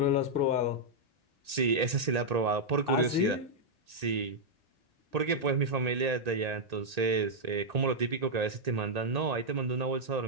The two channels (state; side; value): late; left; 1.8 ms